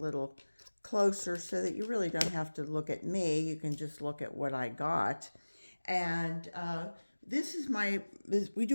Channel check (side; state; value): both; inverted; correlation -1.00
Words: closer so that you really don't have to look at me. You can just look at what I got. And this is we